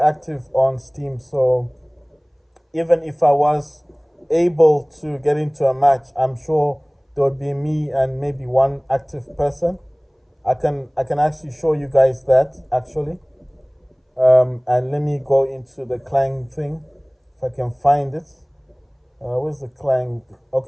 on Steam, so even if I was able to get into a match, I'm sure there would be me and maybe one active person. I can actually show you guys that actually. And let me go into the Clang thing if I can find it. Where's the Clang?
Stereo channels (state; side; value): identical; both; correlation 1.00